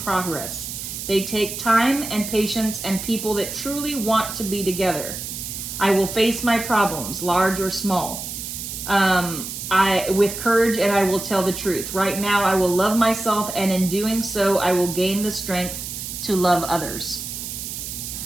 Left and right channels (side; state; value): right; noise; hiss, 7 dB below the sound